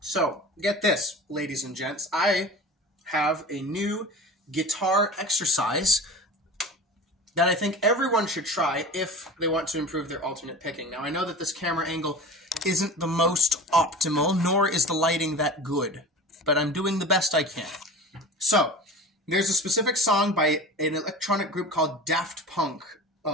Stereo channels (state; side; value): normal; both; correlation 0.35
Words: get this, ladies and gents. I have a new guitar exercise that I think everyone should try if they want to improve their alternate picking. Now, I know that this camera angle isn't the most optimal, nor is the lighting that good, but I'm doing the best I can. So, there's a specific song by an electronic group called Daft Punk,